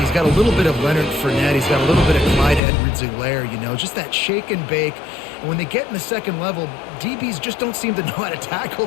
he's got a little bit of Leonard Fournette. He's got a little bit of Clyde Edwards-Helaire, you know, just that shake and bake. And when they get in the second level, DBs just don't seem to know how to tackle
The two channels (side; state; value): right; drops out; at 2.6 s